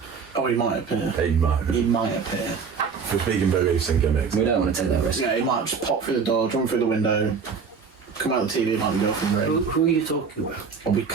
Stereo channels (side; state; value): left; quieter; 5.8 dB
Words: Oh, he might appear. He might. He might appear. If we're speaking beliefs and gimmicks. We don't want to take that risk. Yeah, he might just pop through the door, jump through the window, come out of the TV, might be girlfriend ring. Who are you talking about? Or we